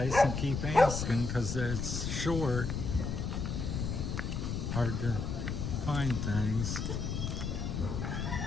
and keep asking, because it's short. Hard to find things.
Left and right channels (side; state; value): left; noise; rumble, 2 dB below the sound